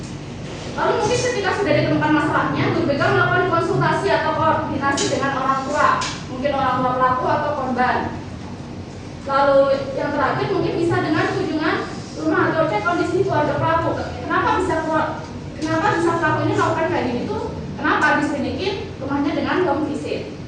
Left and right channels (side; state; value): both; identical; correlation 1.00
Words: Lalu mungkin ketika sudah ditemukan masalahnya, guru BK melakukan konsultasi atau koordinasi dengan orang tua, mungkin orang tua pelaku atau korban. Lalu yang terakhir mungkin bisa dengan kunjungan rumah atau cek kondisi keluarga pelaku. Kenapa bisa pelaku ini melakukan kayak gini tuh? Kenapa diselidikin rumahnya dengan home visit?